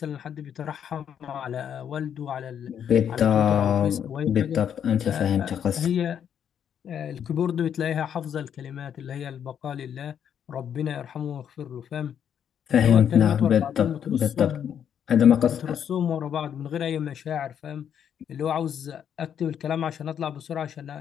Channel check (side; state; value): right; quieter; 8.7 dB